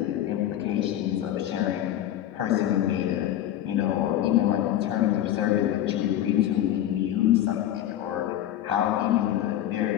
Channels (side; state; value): right; quieter; 12.2 dB